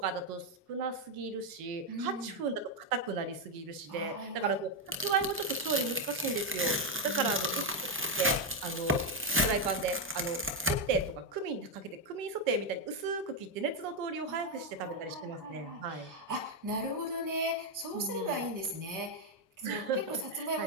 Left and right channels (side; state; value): both; normal; correlation 0.03